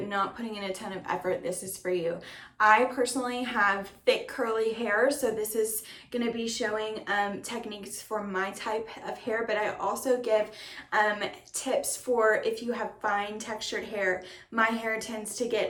not putting in a ton of effort, this is for you. I personally have thick curly hair, so this is going to be showing techniques for my type of hair, but I also give tips for if you have fine textured hair. My hair tends to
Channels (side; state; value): both; identical; correlation 1.00